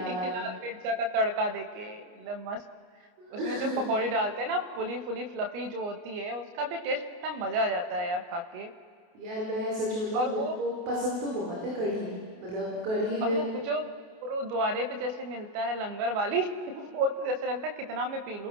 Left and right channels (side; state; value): left; late; 28 ms